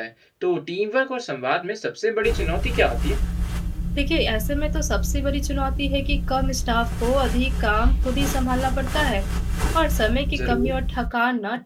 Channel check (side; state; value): both; identical; correlation 1.00